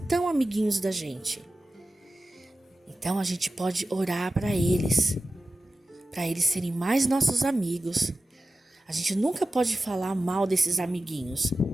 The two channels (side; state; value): both; normal; correlation 0.93